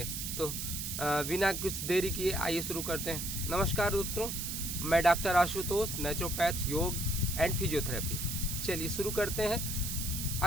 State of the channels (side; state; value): right; noise; hiss, 4 dB below the sound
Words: तो बिना कुछ देरी किए आइए शुरू करते हैं। नमस्कार दोस्तों, मैं डॉक्टर आशुतोष, नेचुरोपैथ, योग एंड फिजियोथेरेपिस्ट। चलिए शुरू करते हैं।